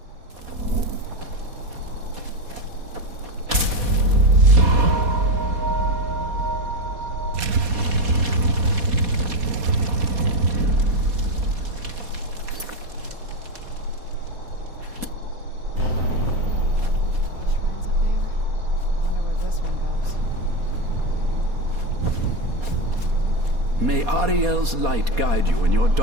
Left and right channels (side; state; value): left; late; 4.2 ms